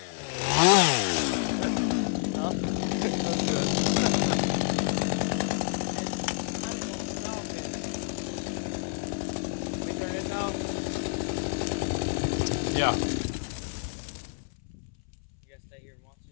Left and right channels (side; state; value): right; silent; 59 dB below the other